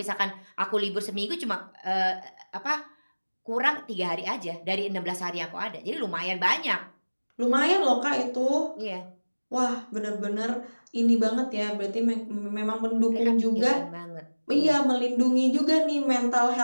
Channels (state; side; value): inverted; both; correlation -1.00